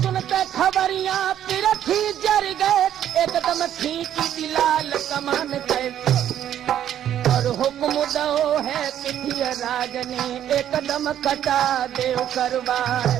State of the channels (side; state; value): left; quieter; 10.7 dB